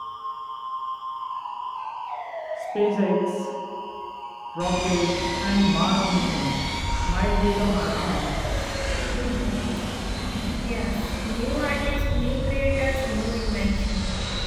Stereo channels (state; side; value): identical; both; correlation 1.00